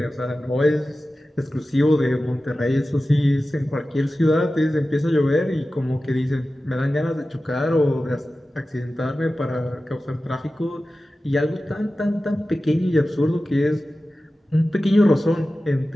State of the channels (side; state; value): both; normal; correlation 0.95